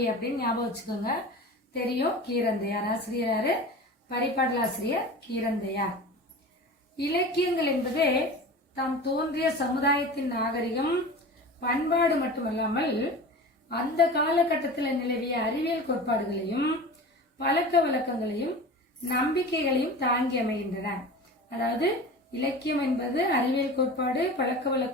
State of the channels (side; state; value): both; normal; correlation 0.34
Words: அப்படின்னு ஞாபகம் வச்சுக்கோங்க. தெரியும் கீரந்தையார் ஆசிரியர் யாரு? பரிபாடல் ஆசிரியர் கீரந்தையார். இலக்கியங்கள் என்பது தாம் தோன்றிய சமுதாயத்தின் நாகரிகம் பண்பாடு மட்டுமல்லாமல் அந்த காலகட்டத்தில் நிலவிய அறிவியல் கோட்பாடுகளையும் பழக்க வழக்கங்களையும் நம்பிக்கைகளையும் தாங்கி அமைகின்றன. அதாவது இலக்கியம் என்பது அறிவியல் கோட்பாடு பழக்க